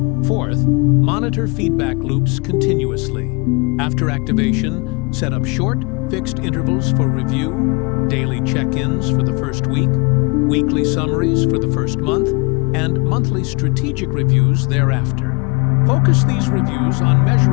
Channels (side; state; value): right; quieter; 30.3 dB